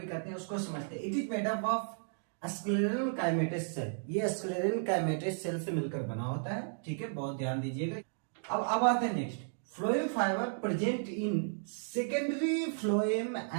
कहते हैं। उसको समझते हैं। It is made up of sclerenchymatous cell. ये स्क्लेरल काइमेटस सेल से मिलकर बना होता है, ठीक है, बहुत ध्यान दीजिएगा। अब आते हैं next. Phloem fibre present in secondary phloem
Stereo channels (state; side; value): silent; left; digital silence